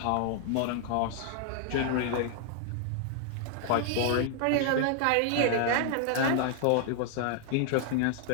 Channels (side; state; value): both; different; correlation 0.00